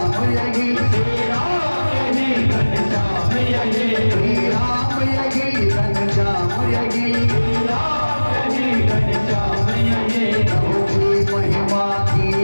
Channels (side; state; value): both; inverted; correlation -1.00